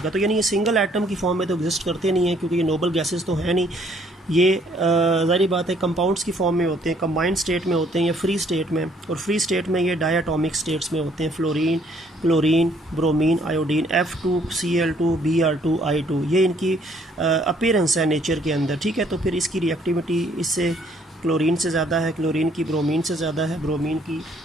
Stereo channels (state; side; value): normal; both; correlation 0.64